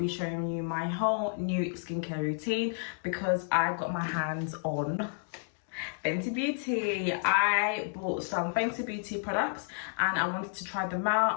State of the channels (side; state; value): right; silent; 57 dB below the other